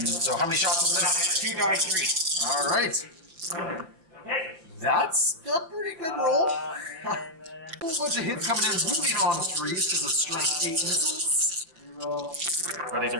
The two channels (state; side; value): late; left; 5.9 ms